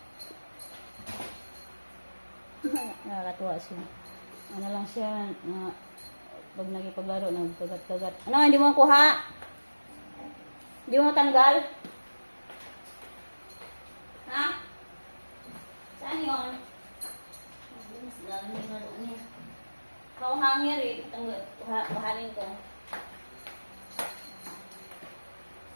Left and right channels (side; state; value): both; inverted; correlation -1.00